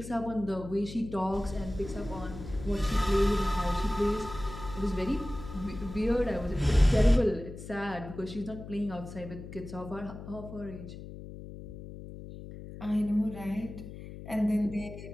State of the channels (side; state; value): left; noise; hum, 12 dB below the sound